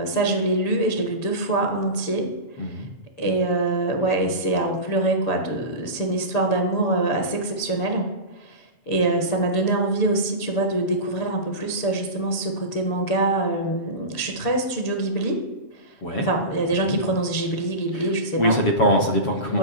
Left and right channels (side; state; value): right; late; 6.9 ms